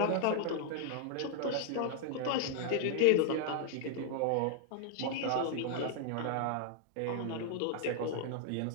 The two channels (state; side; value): different; both; correlation -0.01